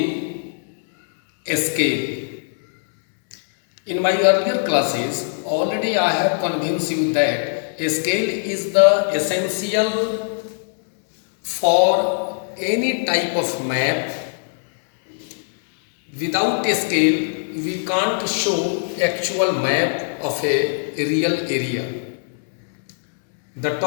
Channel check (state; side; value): silent; right; 65 dB below the other